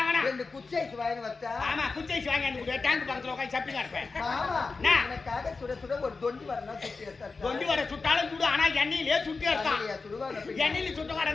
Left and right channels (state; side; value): quieter; right; 4.2 dB